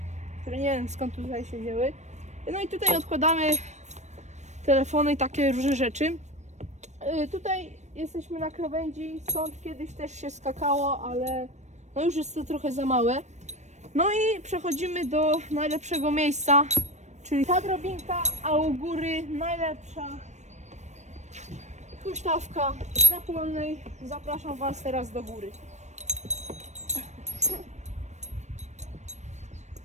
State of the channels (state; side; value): late; left; 0.34 ms